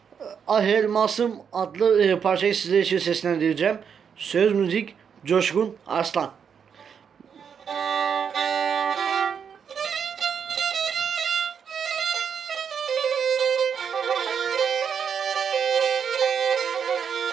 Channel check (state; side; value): quieter; left; 7.2 dB